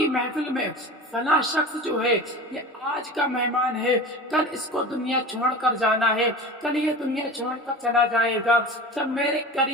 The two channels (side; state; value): both; normal; correlation 0.33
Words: محفل میں فلاں شخص جو ہے یہ آج کا مہمان ہے، کل اس کو دنیا چھوڑ کر جانا ہے، کل یہ دنیا چھوڑ کر چلا جائے گا۔ جب میرے